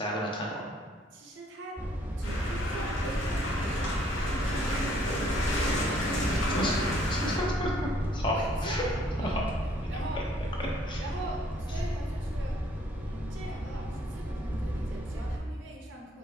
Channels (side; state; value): both; normal; correlation 0.64